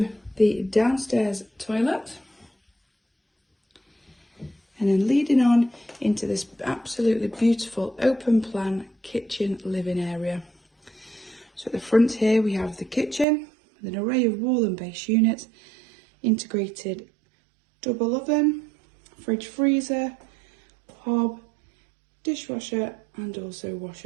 the downstairs toilet. And then leading on into this absolutely beautiful open plan kitchen living area. So at the front here we have the kitchen with an array of wall and base units, integrated double oven, fridge freezer, hob, dishwasher and also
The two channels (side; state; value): left; drops out; at 13.2 s